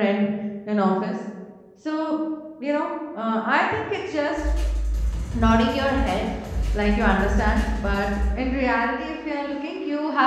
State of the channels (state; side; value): identical; both; correlation 1.00